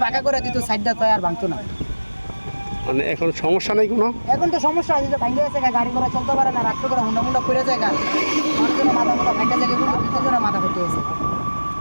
পাকা করে দিত সাইডটা তো আর ভাঙতো না। মানে এখন সমস্যা নেই কোনো? এখন তো সমস্যা আছে, যে ভাঙে গেছে, গাড়ি ঘোড়া চলতে পারে না, রাত্রে করে হুন্ডা পড়ে যায়, মানুষজনের মাথা মোটা ভাঙা যায়, দুজনের মাথা ফেটে গেছে।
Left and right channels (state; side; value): inverted; both; correlation -1.00